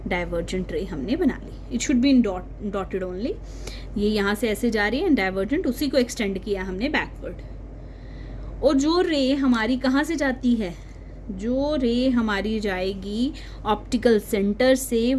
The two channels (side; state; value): both; identical; correlation 1.00